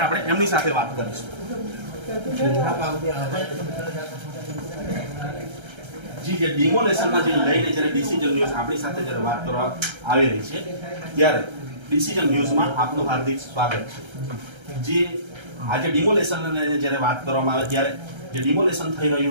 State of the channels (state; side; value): late; left; 1.3 ms